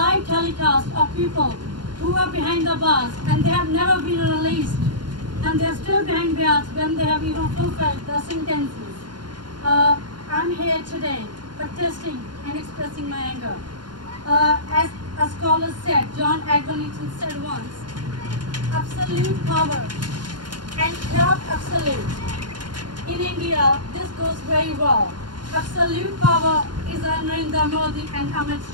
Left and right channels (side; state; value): left; late; 0.71 ms